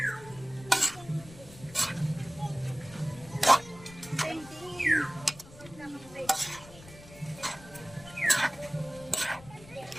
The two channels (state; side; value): noise; left; rumble, 19 dB below the sound